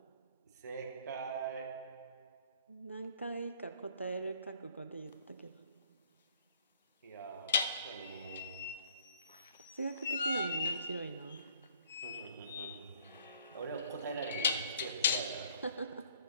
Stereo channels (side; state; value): both; inverted; correlation -0.61